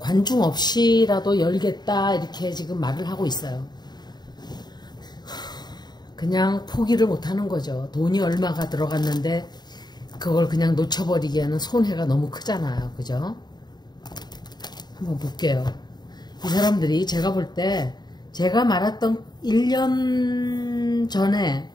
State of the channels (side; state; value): right; late; 0.20 ms